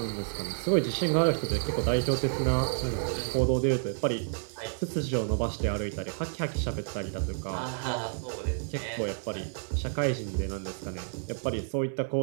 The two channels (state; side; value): silent; left; 58 dB below the other